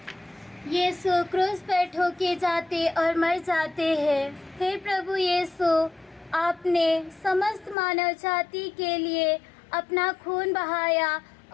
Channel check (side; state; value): right; drops out; at 7.8 s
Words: यीशु क्रूस पर ठोके जाते और मर जाते हैं। हे प्रभु यीशु, आपने समस्त मानव जाति के लिए अपना खून बहाया